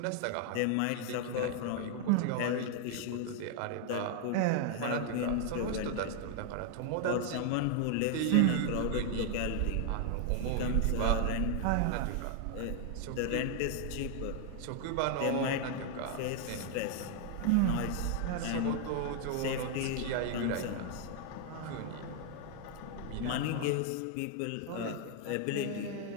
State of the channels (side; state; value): both; different; correlation 0.00